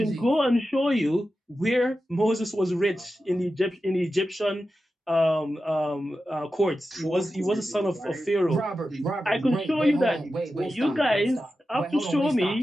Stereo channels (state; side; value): normal; both; correlation 0.92